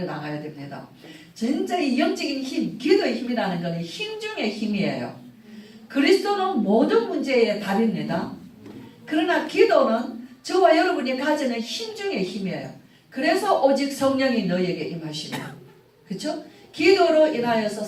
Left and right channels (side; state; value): both; identical; correlation 1.00